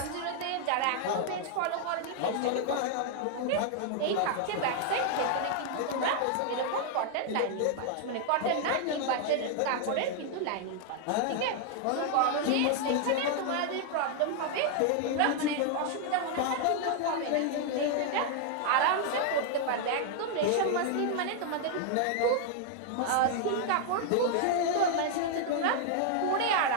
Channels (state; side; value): different; both; correlation 0.00